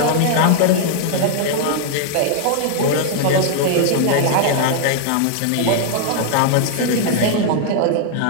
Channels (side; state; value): both; different; correlation 0.00